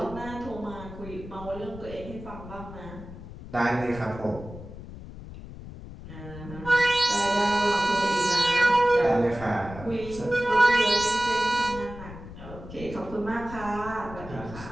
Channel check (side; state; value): left; noise; rumble, 13 dB below the sound